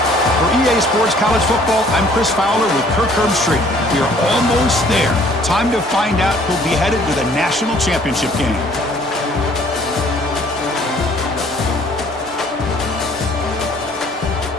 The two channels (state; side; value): normal; both; correlation 0.58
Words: For EA Sports College Football, I'm Chris Fowler with Kirk Herbstreit. We are almost there. Time to find out who'll be headed to the national championship game.